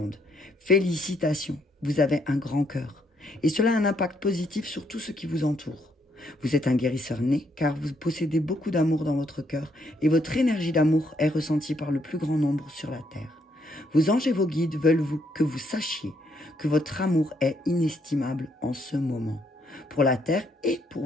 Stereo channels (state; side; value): normal; both; correlation 0.72